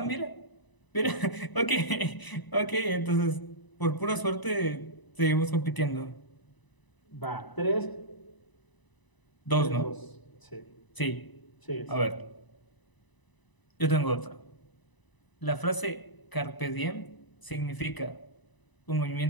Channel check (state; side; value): late; right; 1.0 ms